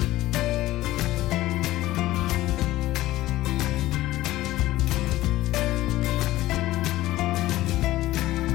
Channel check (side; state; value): right; quieter; 16.3 dB